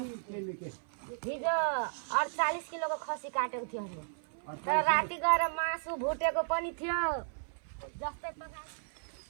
केले के हिजो 48 किलोको खसी काटेको थियो हामीले तर राति गएर मासु भुटेको पनि थियो जस्तै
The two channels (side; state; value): left; silent; 55 dB below the other